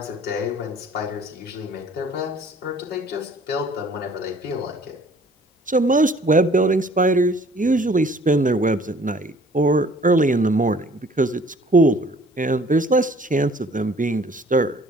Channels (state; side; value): normal; both; correlation 0.54